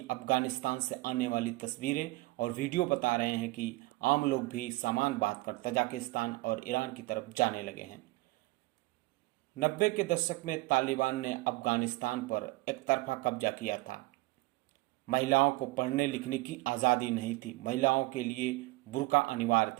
अफगानिस्तान से आने वाली तस्वीरें और वीडियो बता रहे हैं कि आम लोग भी सामान बांधकर तजाकिस्तान और ईरान की तरफ जाने लगे हैं। 90 के दशक में तालिबान ने अफगानिस्तान पर एकतरफा कब्जा किया था। महिलाओं को पढ़ने लिखने की आज़ादी नहीं थी। महिलाओं के लिए बुर्का अनिवार्य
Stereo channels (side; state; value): left; quieter; 21.9 dB